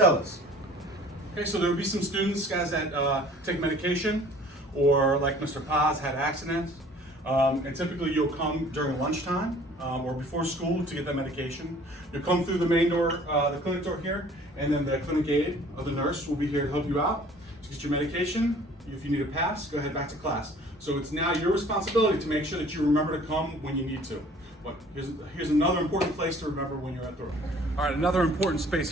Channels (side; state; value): both; normal; correlation 0.52